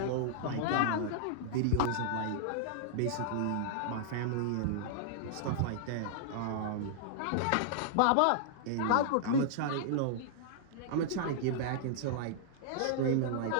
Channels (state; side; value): different; both; correlation -0.02